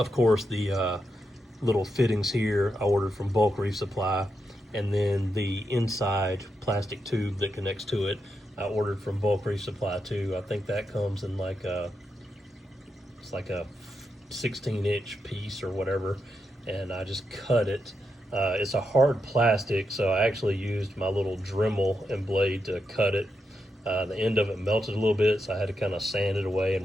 course, the little fittings here I ordered from Bulk Reef Supply, and then the inside plastic tube that connects to it I ordered from Bulk Reef Supply too. I think that comes in like it's like a 16-inch piece or whatever, and I just cut it. It's a hard plastic, so I actually used my little Dremel and blade to cut it. The end of it melted a little bit, so I had to kind of sand it away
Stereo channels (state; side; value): normal; both; correlation 0.85